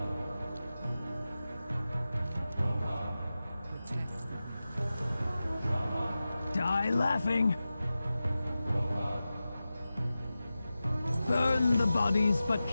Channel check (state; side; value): inverted; both; correlation -0.94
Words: Die laughing. Burn the bodies, but